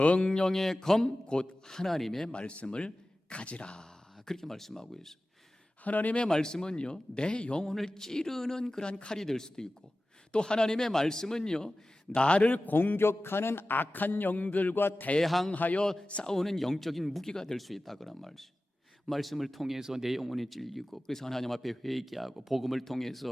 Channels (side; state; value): both; normal; correlation 0.96